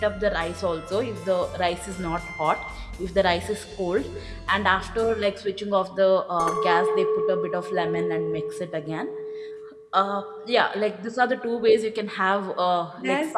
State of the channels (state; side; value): identical; both; correlation 1.00